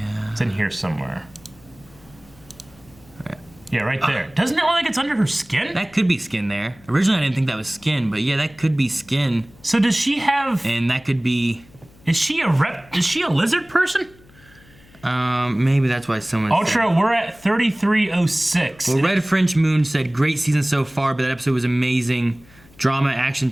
It's in here somewhere. Right. Yeah, right there. Doesn't it look like it's under her skin? That could be skin there. Originally, I didn't think that was skin, but yeah, that could be skin. So does she have... And that could be... Is she a lizard person? Maybe that's why someone Ultra, we're at 3306. Well, Red French Moon said, great season so far, but that episode was amazing. Drama, action,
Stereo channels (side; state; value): left; noise; hum, 27 dB below the sound